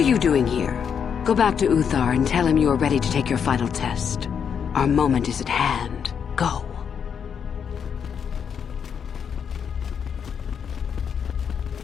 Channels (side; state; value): right; quieter; 7.3 dB